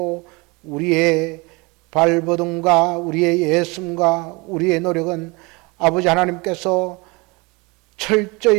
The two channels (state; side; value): quieter; left; 26.6 dB